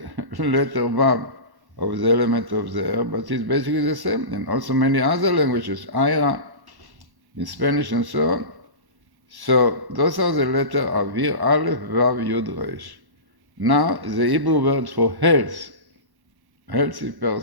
letter vav of the element of the air, but it's basically the same. And also many other languages, Ira, in Spanish and so on. So those are the letter avir, aleph, vav, yud, resh. Now the Hebrew word for health, healthy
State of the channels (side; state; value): left; late; 1.1 ms